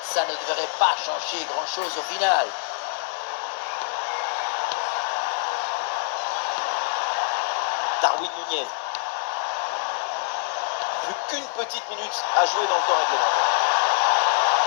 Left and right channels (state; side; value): silent; right; digital silence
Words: Ça ne devrait pas changer grand-chose au final. Darwin Nunez. Plus qu'une petite minute à jouer dans le temps réglementaire.